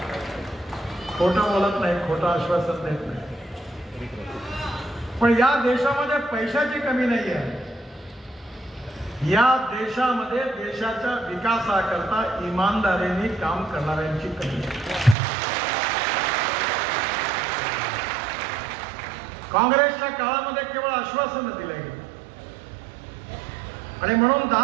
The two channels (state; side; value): drops out; left; at 15.2 s